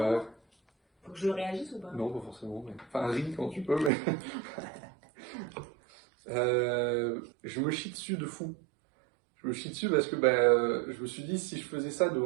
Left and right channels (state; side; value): drops out; left; at 3.9 s